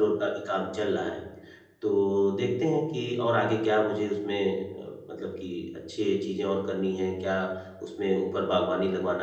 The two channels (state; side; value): identical; both; correlation 1.00